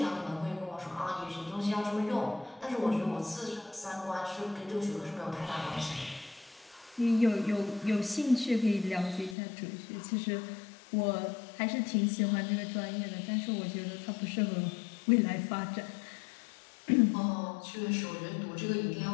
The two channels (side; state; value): right; drops out; at 9.3 s